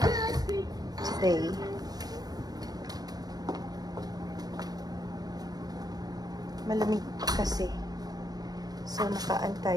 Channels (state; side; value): late; left; 0.19 ms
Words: today. Malamig kasi. So, nakaan